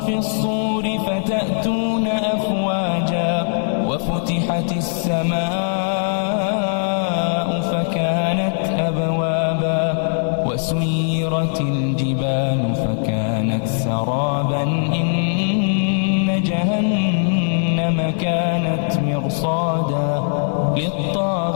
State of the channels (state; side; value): silent; right; 62 dB below the other